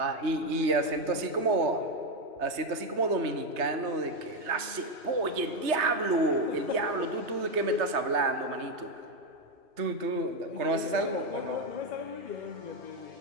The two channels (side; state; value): left; late; 3.2 ms